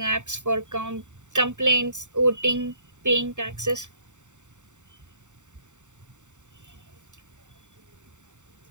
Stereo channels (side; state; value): left; late; 0.84 ms